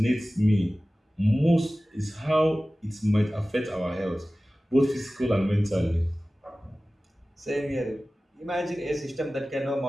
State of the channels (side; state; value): both; normal; correlation 0.97